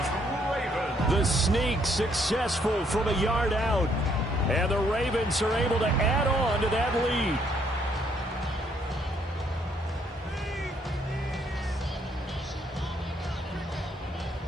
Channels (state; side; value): normal; both; correlation 0.69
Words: The sneak successful from a yard out. And the Ravens are able to add on to that lead.